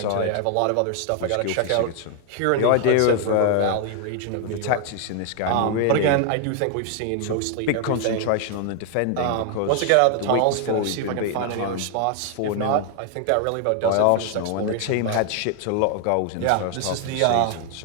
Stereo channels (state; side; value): different; both; correlation 0.00